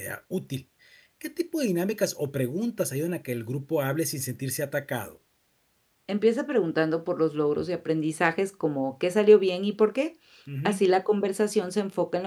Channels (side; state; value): both; identical; correlation 1.00